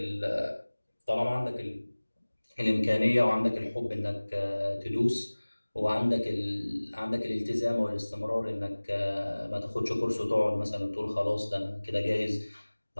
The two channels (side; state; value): both; inverted; correlation -1.00